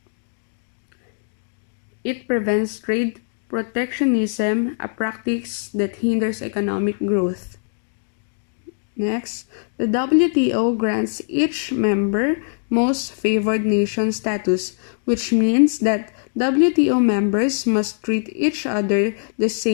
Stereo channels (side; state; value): right; silent; digital silence